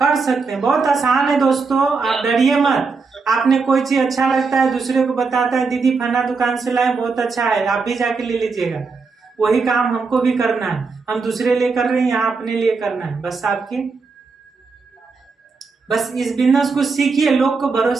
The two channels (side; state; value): left; quieter; 4.6 dB